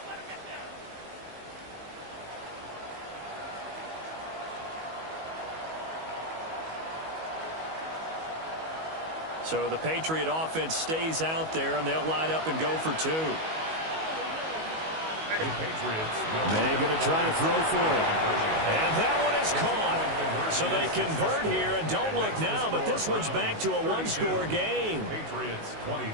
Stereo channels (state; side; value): late; left; 19 ms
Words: So the Patriot offense stays out there, and they'll line up and go for 2. May going to try to throw for it. And that one is caught. So they convert here, and don't look now, but this one's back to a 1-score game. Patriots